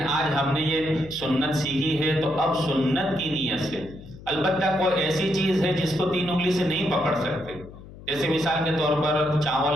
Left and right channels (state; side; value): noise; left; hum, 17 dB below the sound